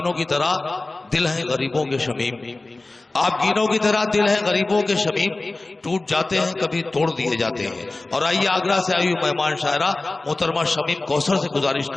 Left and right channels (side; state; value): right; quieter; 3.1 dB